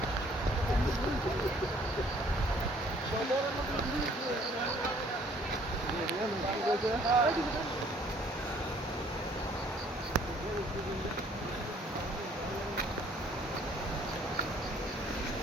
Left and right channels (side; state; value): both; normal; correlation 0.59